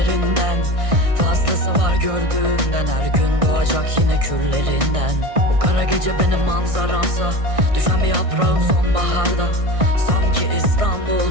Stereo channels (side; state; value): left; late; 1.6 ms